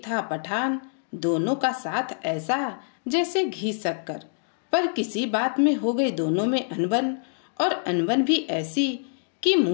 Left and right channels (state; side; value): silent; right; digital silence